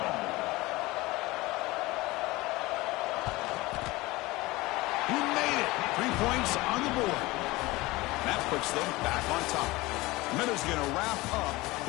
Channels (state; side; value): quieter; right; 20.8 dB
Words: He made it. 3 points on the board. That puts them back on top. Minutes going to wrap up